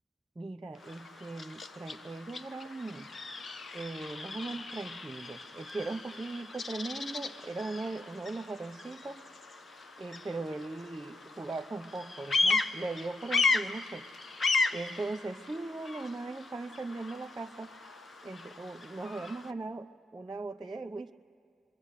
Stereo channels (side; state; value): both; normal; correlation 0.82